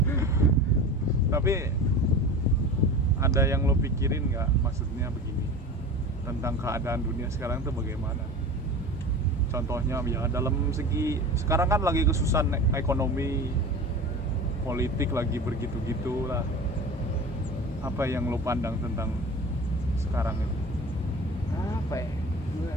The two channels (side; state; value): both; normal; correlation 0.34